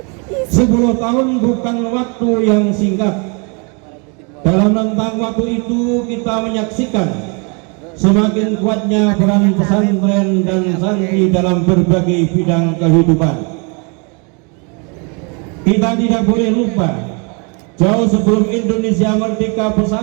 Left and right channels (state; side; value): quieter; left; 33.8 dB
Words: 10 tahun bukan waktu yang singkat. Dalam rentang waktu itu kita menyaksikan semakin kuatnya peran pesantren dan santri dalam berbagai bidang kehidupan. Kita tidak boleh lupa, jauh sebelum Indonesia merdeka,